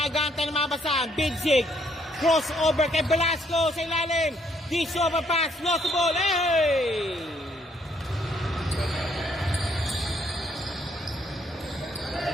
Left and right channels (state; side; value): normal; both; correlation 0.69